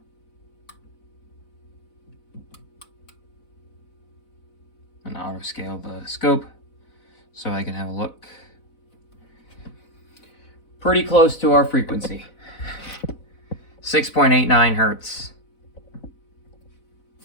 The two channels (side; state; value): right; late; 4.0 ms